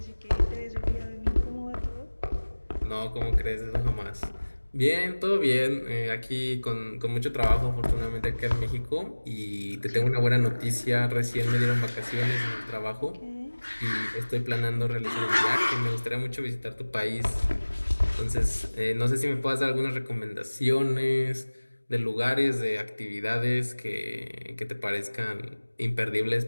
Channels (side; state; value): both; inverted; correlation -1.00